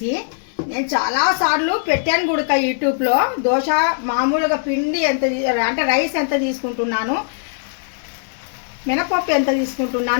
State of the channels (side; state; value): right; silent; digital silence